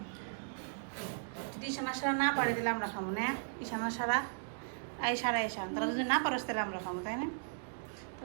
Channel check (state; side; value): silent; left; digital silence